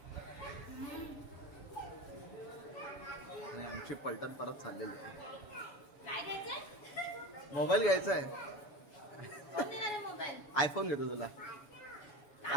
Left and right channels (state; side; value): late; right; 7.0 ms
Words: आणि आमची पलटण परत चाललेली आहे. काय घ्यायचंय? मोबाईल घ्यायचा आहे. कोण देणार आहे मोबाईल? आयफोन घेतो तुला.